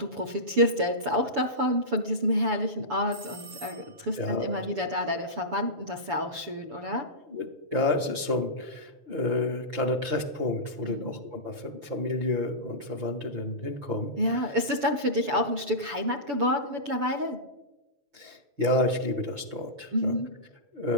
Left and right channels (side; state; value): left; late; 7.0 ms